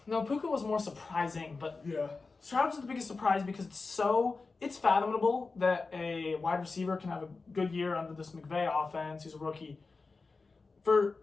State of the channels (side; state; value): right; quieter; 4.1 dB